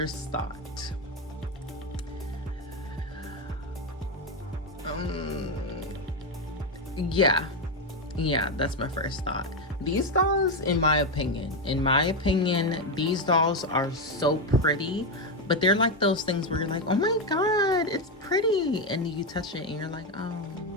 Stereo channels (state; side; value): normal; both; correlation 0.08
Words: thought. Yeah, that's my first thought. These dolls, in my opinion, these dolls are so pretty, but they're like those things where you're like, oh my God, it's pretty. And you touch it and you're like, oh,